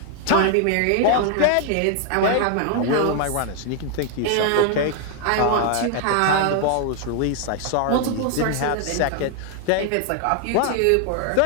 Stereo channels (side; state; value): both; different; correlation 0.00